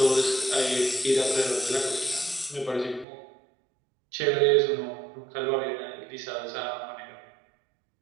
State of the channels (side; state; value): left; drops out; at 3.1 s